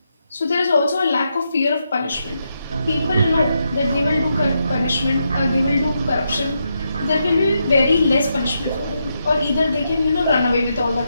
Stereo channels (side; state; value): both; inverted; correlation -0.83